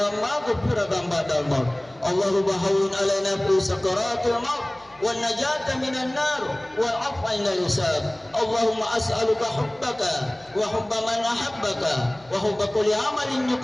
maghfiratan ba'da al-maut. Allahumma hawwin 'alaina fi sakaratil maut wan najata minan nar wal 'afwa 'inda al-hisab. Allahumma as'aluka hubbaka wa hubba man ahabbaka wa hubba kulli 'amalin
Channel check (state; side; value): noise; left; hum, 29 dB below the sound